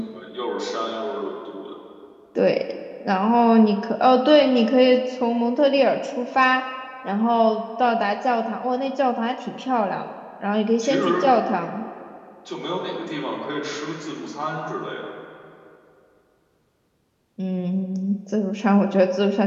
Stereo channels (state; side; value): identical; both; correlation 1.00